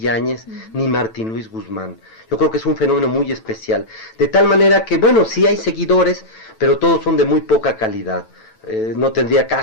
ni Martín Luis Guzmán. Yo creo que es un fenómeno muy especial. De tal manera que, bueno, sí hay seguidores, pero todos son de muy poca calidad. No tendría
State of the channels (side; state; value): right; late; 9.0 ms